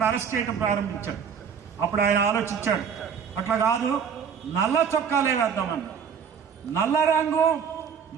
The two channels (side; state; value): left; quieter; 7.1 dB